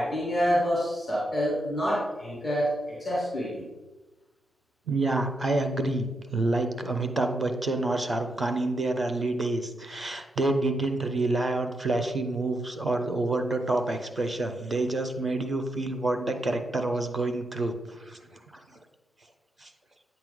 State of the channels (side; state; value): both; normal; correlation 0.82